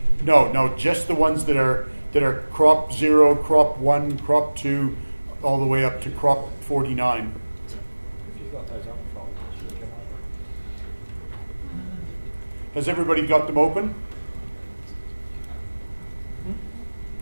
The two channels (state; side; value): inverted; both; correlation -1.00